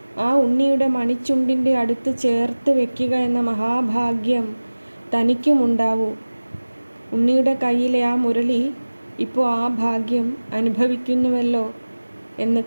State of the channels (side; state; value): both; inverted; correlation -1.00